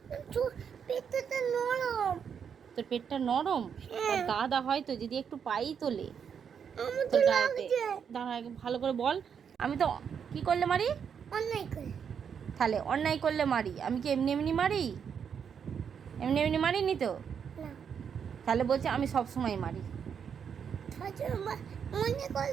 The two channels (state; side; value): quieter; left; 7.3 dB